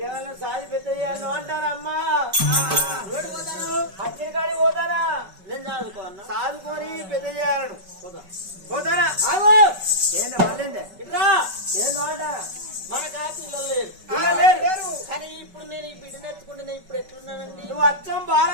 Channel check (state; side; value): late; left; 5.2 ms